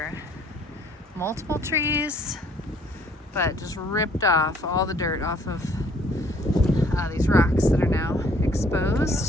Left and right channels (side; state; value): both; normal; correlation 0.61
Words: multiple trees, but just ripped off all the dirt off of these rocks that are now